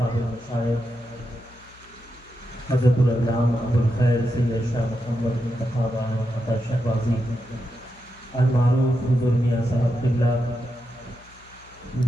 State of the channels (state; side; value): noise; left; hum, 26 dB below the sound